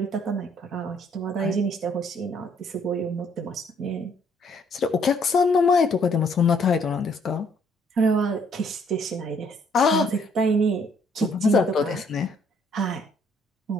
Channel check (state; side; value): normal; both; correlation 0.65